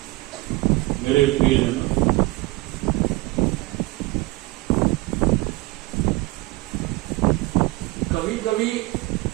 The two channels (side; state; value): left; quieter; 21.7 dB